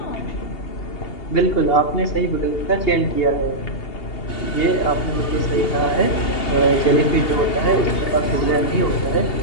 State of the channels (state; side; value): late; right; 2.8 ms